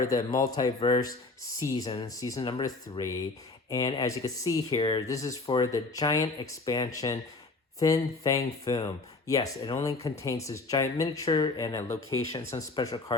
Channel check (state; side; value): quieter; right; 3.6 dB